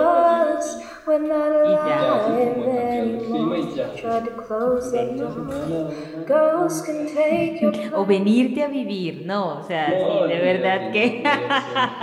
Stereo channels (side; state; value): both; identical; correlation 1.00